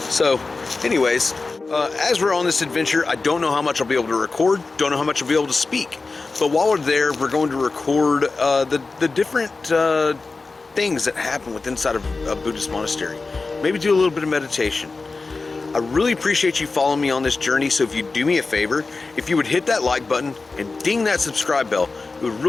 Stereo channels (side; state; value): right; quieter; 3.9 dB